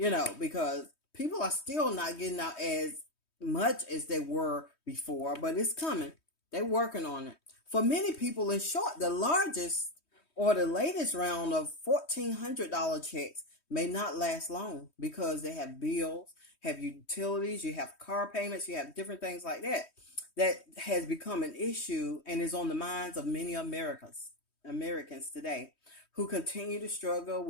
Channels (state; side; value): late; right; 3.2 ms